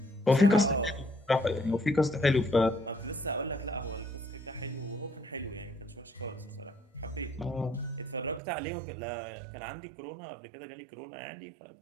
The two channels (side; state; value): left; drops out; at 8.4 s